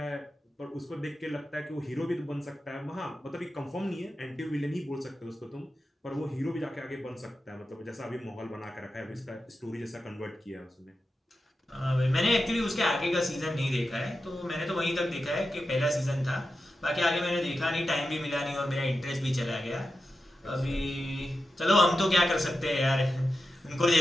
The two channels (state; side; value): normal; both; correlation 0.91